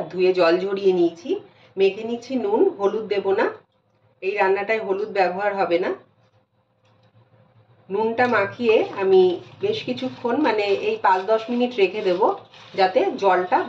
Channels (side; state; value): both; identical; correlation 1.00